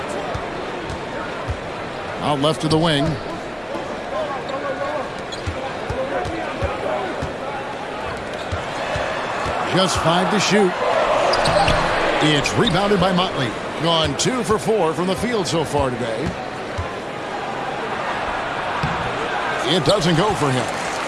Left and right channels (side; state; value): both; identical; correlation 1.00